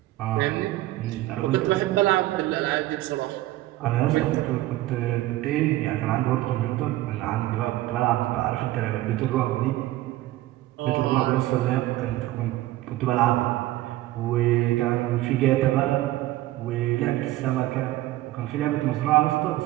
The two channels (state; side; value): quieter; left; 16.3 dB